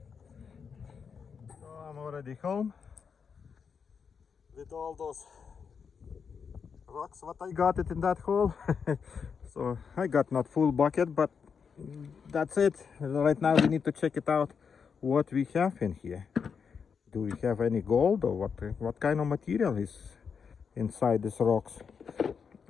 so I'm already home with all those rocks what I got it in that hole. So I got not full bucket, but that's it. Right now we need to check it out what we have in here. Do we have any gold, or what kind of material is inside these rocks?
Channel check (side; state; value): right; quieter; 6.3 dB